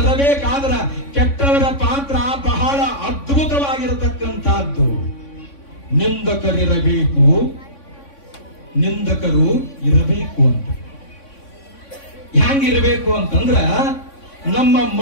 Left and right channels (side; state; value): right; late; 3.5 ms